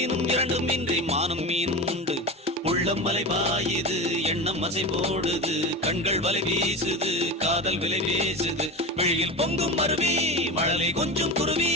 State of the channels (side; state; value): both; normal; correlation 0.25